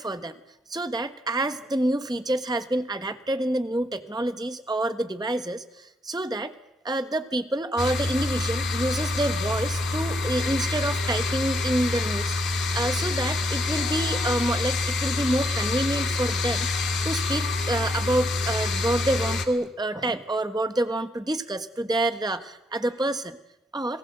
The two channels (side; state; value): both; normal; correlation 0.74